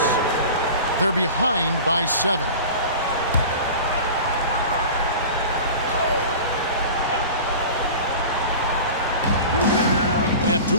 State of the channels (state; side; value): inverted; both; correlation -0.35